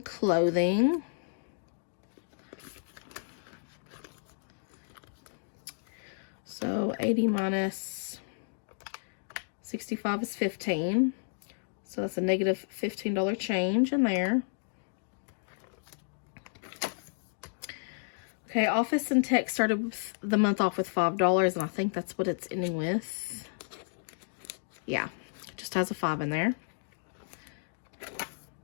clothing. So 80 minus 65 is 15. So that's a negative $15 change in there. Okay, office and tech started the month off with $5, and I think that's what it's ending with. Yeah, it just has a 5 in there.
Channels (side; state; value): right; silent; digital silence